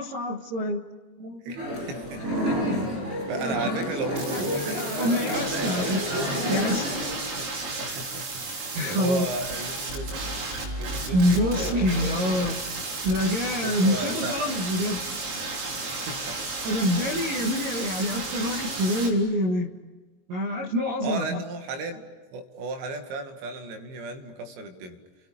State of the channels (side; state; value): left; late; 22 ms